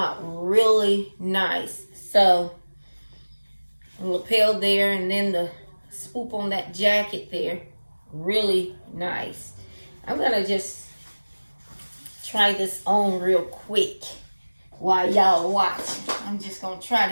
really nice. So lapel there, and then the swoop on that jacket there, really nice. I'm gonna just try this on real quick while y'all watch. I'm just gonna try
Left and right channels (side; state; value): both; inverted; correlation -1.00